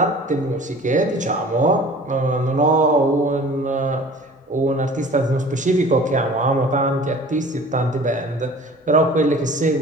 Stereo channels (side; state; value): both; normal; correlation 0.45